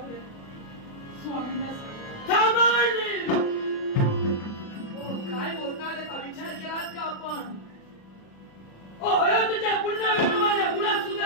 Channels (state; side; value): late; right; 36 ms